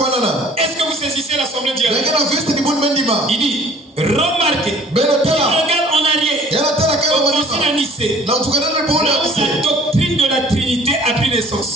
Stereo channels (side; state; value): both; normal; correlation 0.52